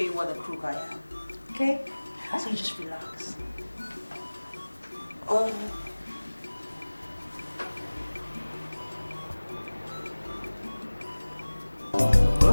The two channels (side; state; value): both; inverted; correlation -1.00